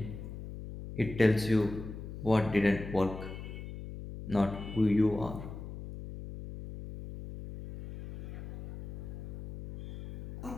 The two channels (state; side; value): noise; left; hum, 10 dB below the sound